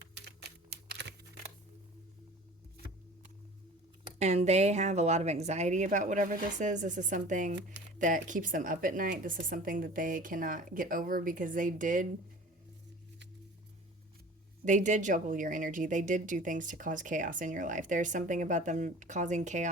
And they have a lot of anxiety about whatever this is. This is something that keeps them up at night. This is something that they cannot get over because they did juggle your energy. They did do things to cause chaos in your life. There's something about them causing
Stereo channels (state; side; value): normal; both; correlation 0.43